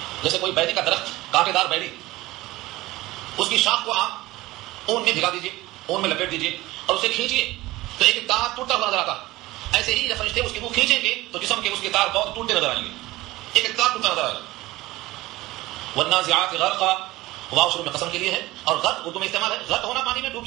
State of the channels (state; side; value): quieter; left; 18.5 dB